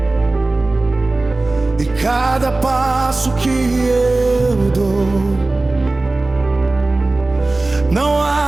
e cada passo que eu dou. Não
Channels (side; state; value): left; quieter; 3.0 dB